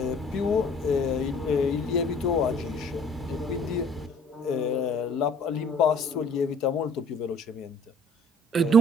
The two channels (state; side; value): normal; both; correlation 0.54